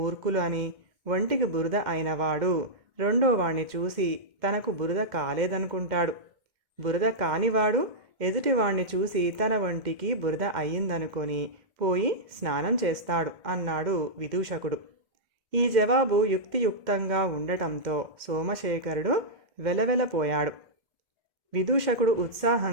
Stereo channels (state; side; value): late; left; 2.1 ms